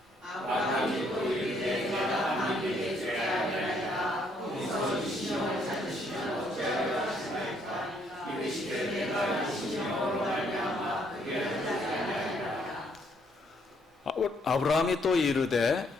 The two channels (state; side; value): normal; both; correlation 0.69